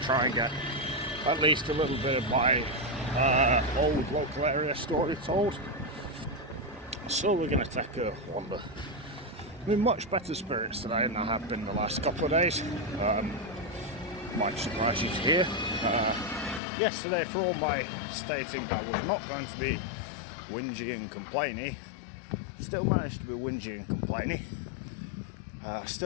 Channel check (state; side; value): drops out; right; at 16.6 s